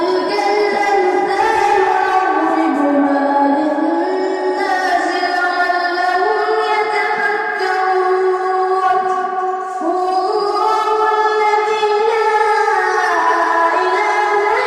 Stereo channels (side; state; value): both; identical; correlation 1.00